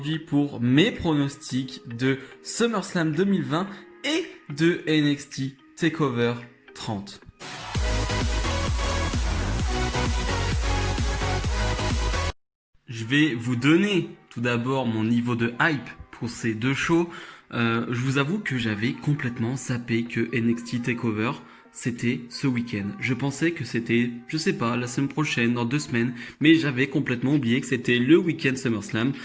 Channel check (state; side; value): identical; both; correlation 1.00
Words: pour mes pronostics de SummerSlam 2020 et de NXT TakeOver 30. Je vais vous donner tout d'abord mon niveau de hype pour ces deux shows. Je vous avoue que j'avais complètement zappé que NXT TakeOver c'était ce week-end. Je pensais que c'était, je sais pas, la semaine prochaine, dans 2 semaines, mais j'avais complètement oublié que c'était le week-end SummerSlam.